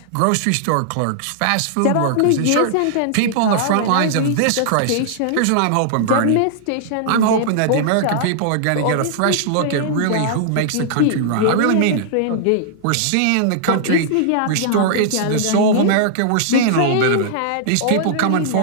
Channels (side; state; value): both; different; correlation -0.01